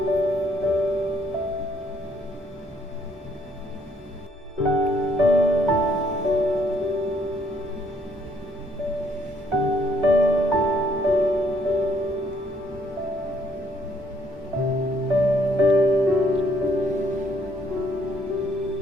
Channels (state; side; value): normal; both; correlation 0.67